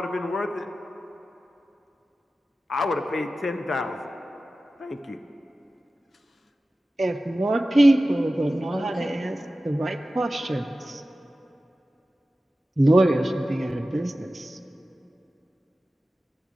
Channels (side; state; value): both; normal; correlation 0.95